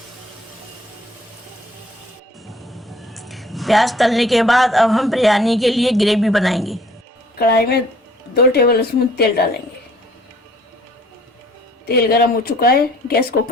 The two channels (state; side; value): normal; both; correlation 0.57